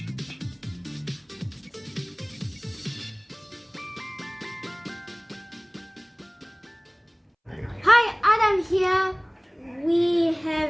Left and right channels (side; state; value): both; identical; correlation 1.00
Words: Hi, Adam here. We